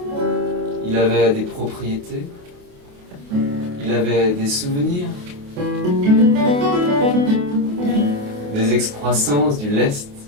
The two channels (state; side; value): late; left; 28 ms